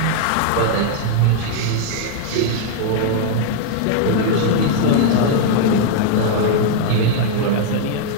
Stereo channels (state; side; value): different; both; correlation -0.01